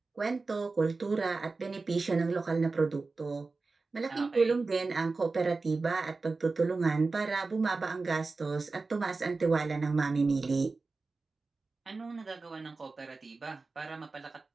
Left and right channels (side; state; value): left; quieter; 3.9 dB